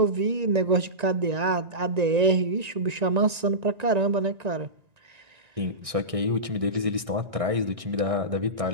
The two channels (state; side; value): late; left; 1.9 ms